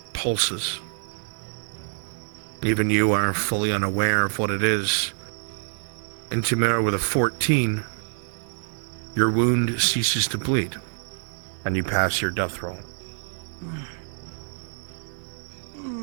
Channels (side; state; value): left; silent; digital silence